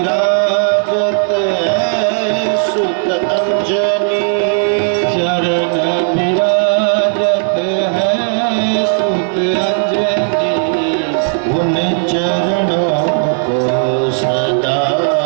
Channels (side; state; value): left; silent; digital silence